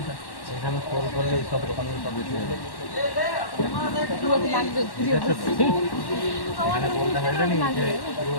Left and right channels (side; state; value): right; late; 1.1 ms